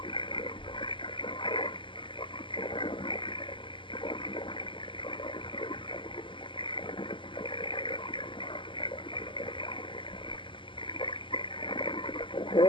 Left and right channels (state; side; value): late; right; 0.25 ms